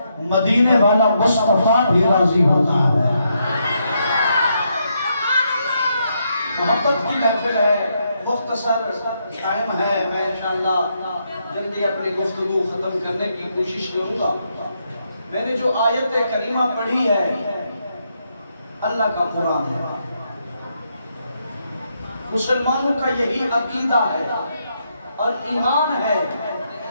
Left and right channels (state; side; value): inverted; both; correlation -0.79